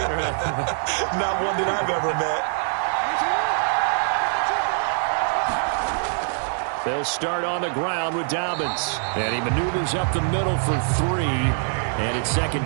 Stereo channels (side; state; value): left; silent; digital silence